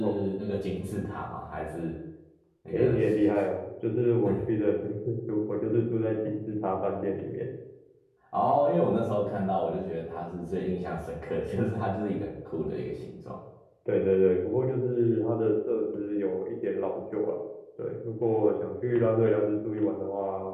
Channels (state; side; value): identical; both; correlation 1.00